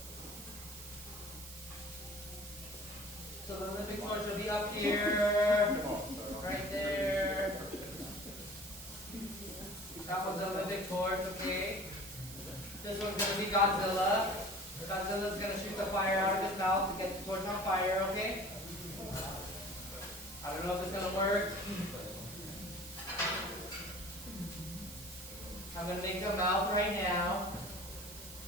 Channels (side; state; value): right; noise; hiss, 14 dB below the sound